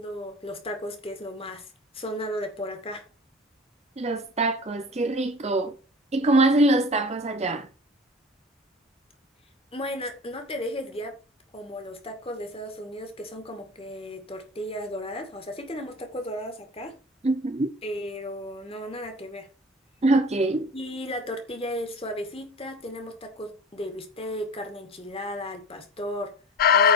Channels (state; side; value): normal; both; correlation 0.36